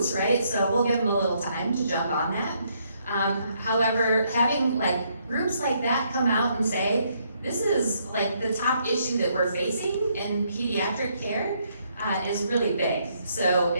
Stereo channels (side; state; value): both; inverted; correlation -0.72